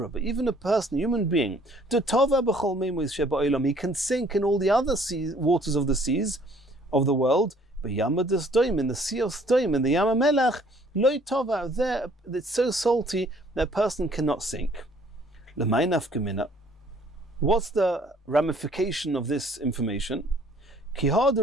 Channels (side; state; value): both; normal; correlation 0.59